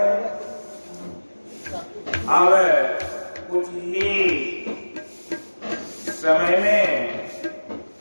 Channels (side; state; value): both; inverted; correlation -1.00